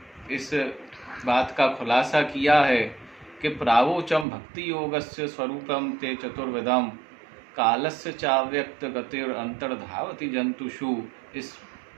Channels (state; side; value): drops out; left; at 4.2 s